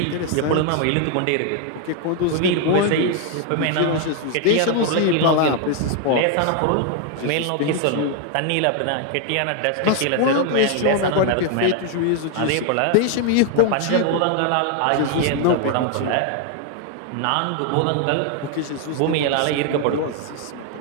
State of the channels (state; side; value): different; both; correlation 0.00